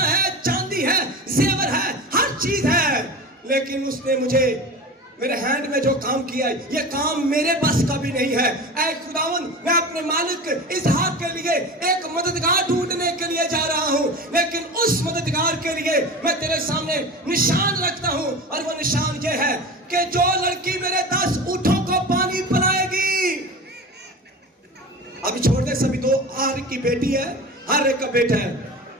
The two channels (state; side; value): normal; both; correlation 0.32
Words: है, चांदी है, जेवर है, हर चीज है, लेकिन उसने मुझे मेरे हैंड में जो काम किया है, ये काम मेरे बस का भी नहीं है। ऐ खुदावन, मैं अपने मालिक इसहाक के लिए एक मददगार ढूंढने के लिए जा रहा हूं, लेकिन उस मददगार के लिए मैं तेरे सामने निशान रखता हूं, और वो निशान ये है कि जो लड़की मेरे 10 ऊंटों को पानी पिलाएगी। अभी छोड़ दे सभी, दो हर की बेटी है, हर एक का बेटा है।